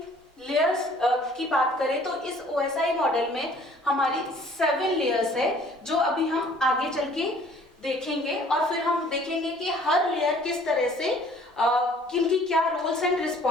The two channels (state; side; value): normal; both; correlation 0.55